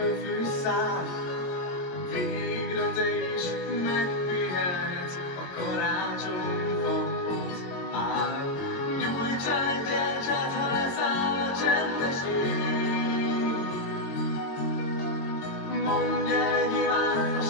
fűszál. Végre te is megpihenhetsz, a karácsonyfa ott áll. Nyújts el gyertyát, ha leszáll a csendes ég. Mondj el egy imád a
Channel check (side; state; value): right; late; 22 ms